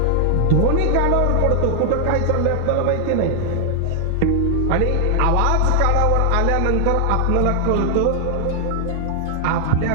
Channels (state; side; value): different; both; correlation 0.00